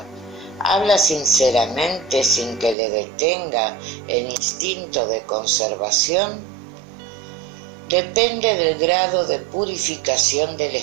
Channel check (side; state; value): left; drops out; at 2.8 s